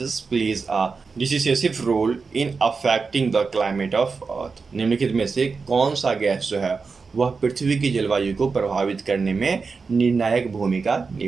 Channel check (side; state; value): left; quieter; 4.7 dB